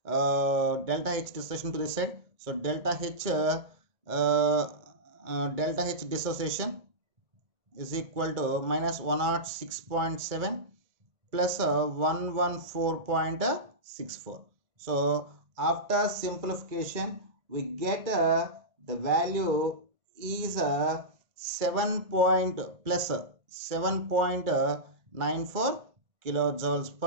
delta H dissociation to this side. So delta H dissociation is equal to minus 106.7 plus 114.64. So after simplification we get the value is 7.94 kilojoules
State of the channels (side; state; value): left; late; 1.8 ms